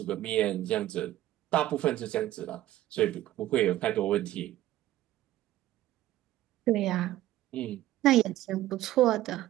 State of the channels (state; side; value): quieter; left; 14.5 dB